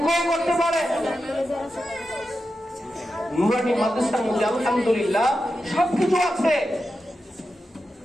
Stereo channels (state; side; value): normal; both; correlation 0.90